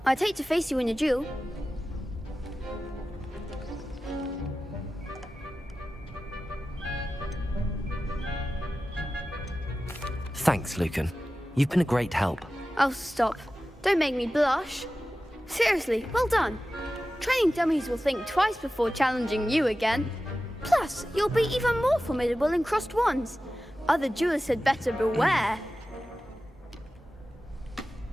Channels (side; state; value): both; normal; correlation 0.94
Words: I'd hate to face you in a duel. Thanks, Lucan. You've been a great help. Oh, stop. Don't make me blush. Seriously, well done. Training dummies will think twice before challenging you again. Plus, you'll be even more formidable in crossed wands. Other duelists had better beware.